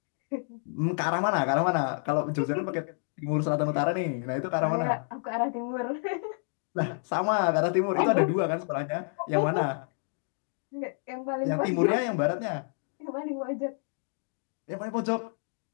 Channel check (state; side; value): silent; right; 58 dB below the other